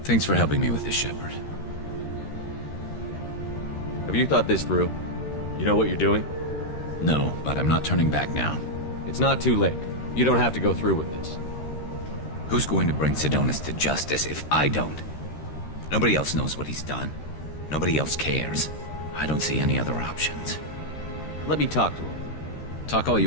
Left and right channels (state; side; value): late; right; 13 ms